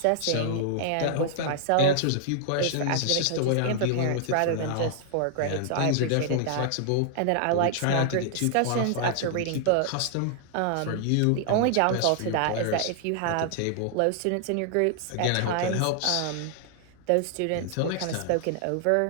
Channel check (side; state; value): both; different; correlation 0.00